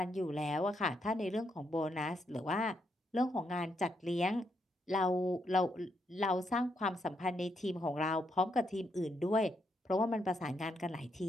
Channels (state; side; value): normal; both; correlation 0.78